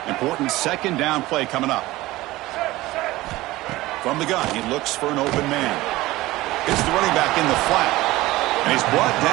Important 2nd down play coming up. From the gun, he looks for an open man. It's the running back in the flat. And he's brought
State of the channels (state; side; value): quieter; left; 18.3 dB